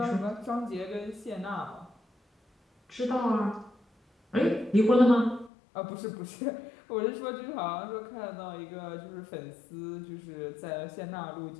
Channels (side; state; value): right; drops out; at 5.5 s